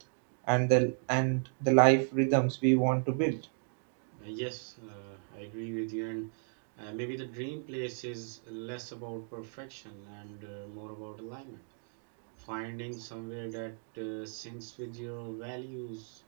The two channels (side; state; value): left; silent; 55 dB below the other